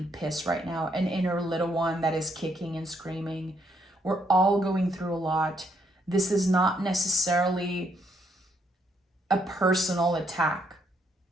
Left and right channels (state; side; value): normal; both; correlation 0.72